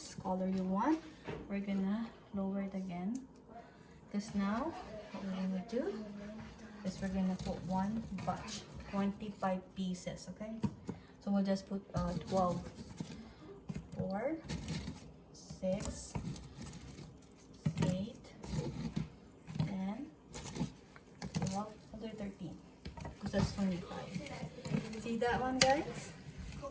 color you want. We're gonna lower it again, because now what we're gonna do is we're gonna put one batch, 25 pieces. Okay, so we'll just put 12, 4, 6, 8, 10, 12, 13, because that's 25. See that one, guys?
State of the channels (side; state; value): both; identical; correlation 1.00